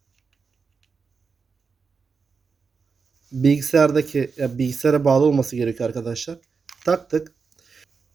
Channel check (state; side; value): quieter; left; 5.2 dB